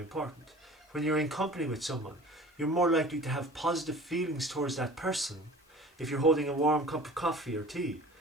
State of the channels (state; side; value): normal; both; correlation 0.43